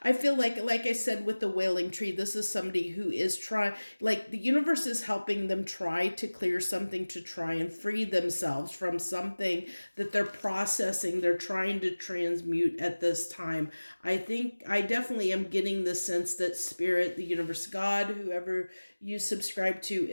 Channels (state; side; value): inverted; both; correlation -1.00